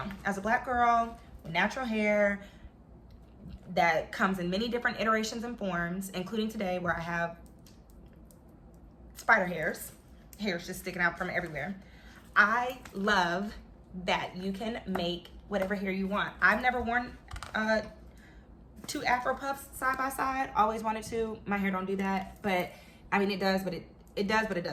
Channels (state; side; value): identical; both; correlation 1.00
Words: as a Black girl with natural hair that comes in many different iterations and forms, including today where I have spider hairs just sticking out from everywhere, I love that you can make whatever hair you want. I've never worn two Afro puffs side by side. Always wanted to. My hair don't do that, but I mean it does, but it does, but it